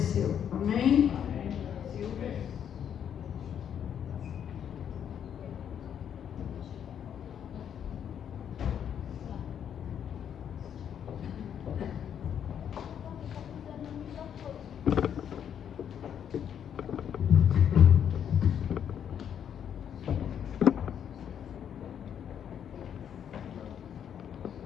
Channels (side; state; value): right; quieter; 8.8 dB